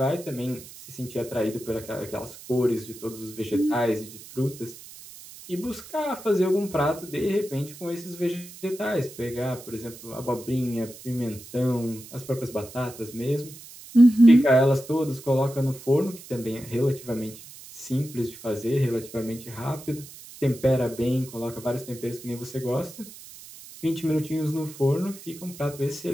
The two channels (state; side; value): noise; right; hiss, 17 dB below the sound